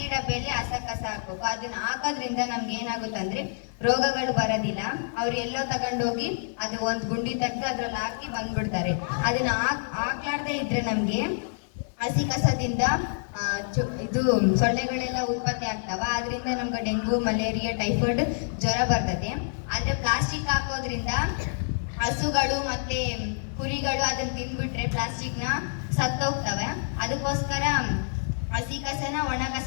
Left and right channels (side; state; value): right; silent; digital silence